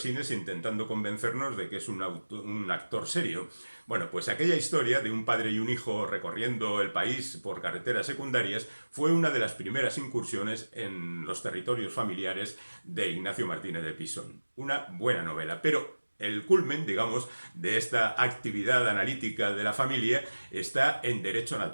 intentando convencernos de que es un actor serio. Bueno, pues aquella historia de un padre y un hijo recorriendo el país por carreteras secundarias fue una de las primeras incursiones en los territorios familiares de Ignacio Martínez de Pisón. Una buena novela, pero el culmen, digamos, de esta actividad analítica de la familia está en Derecho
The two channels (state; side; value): inverted; both; correlation -1.00